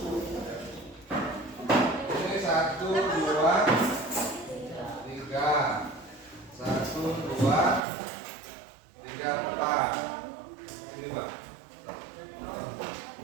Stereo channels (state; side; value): drops out; left; at 7.8 s